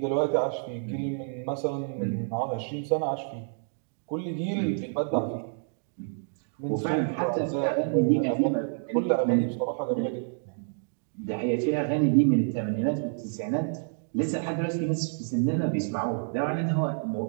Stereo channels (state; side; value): silent; left; digital silence